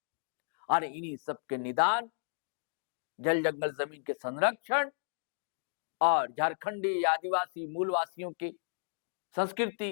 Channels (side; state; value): right; silent; digital silence